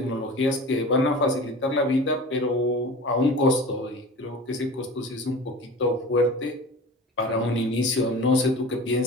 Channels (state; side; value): normal; both; correlation 0.36